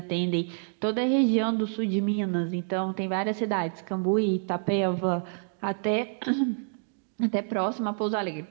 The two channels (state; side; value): silent; left; digital silence